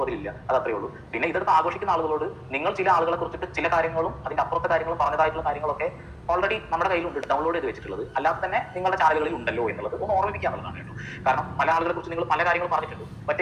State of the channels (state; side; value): identical; both; correlation 1.00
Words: അത് അത്രേ ഉള്ളൂ. പിന്നെ ഇതെടുത്ത് ആഘോഷിക്കുന്ന ആളുകളോട് നിങ്ങൾ ചില ആളുകളെ കുറിച്ചിട്ട് ചില കാര്യങ്ങളും അതിൻ്റെ അപ്പുറത്തെ കാര്യങ്ങളും പറഞ്ഞതായിട്ടുള്ള കാര്യങ്ങളൊക്കെ ഓൾറെഡി നമ്മുടെ കയ്യിലുണ്ട്, ഡൗൺലോഡ് ചെയ്ത് വെച്ചിട്ടുള്ളത്. അല്ലാതെ തന്നെ നിങ്ങളുടെ ചാനലുകളിൽ ഉണ്ടല്ലോ എന്നുള്ളത് ഒന്ന് ഓർമ്മിപ്പിക്കാന്നുള്ളതാണ് കേട്ടോ. കാരണം പല ആളുകളെ കുറിച്ച് നിങ്ങൾ പല കാര്യങ്ങളും പറഞ്ഞിട്ടുണ്ട്.